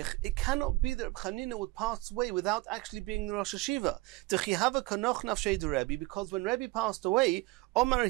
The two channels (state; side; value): quieter; left; 21.8 dB